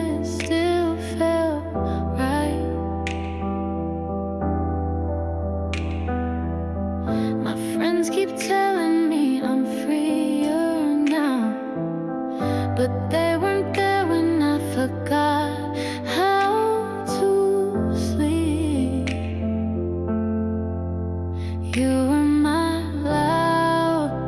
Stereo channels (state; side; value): identical; both; correlation 1.00